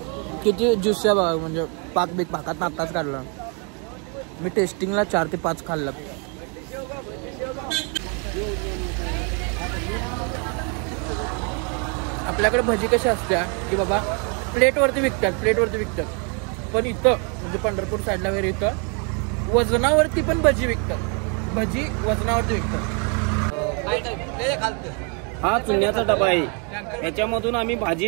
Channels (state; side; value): quieter; left; 36.6 dB